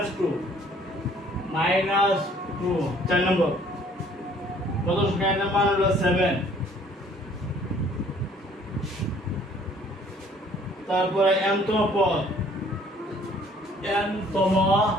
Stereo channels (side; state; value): both; normal; correlation 0.58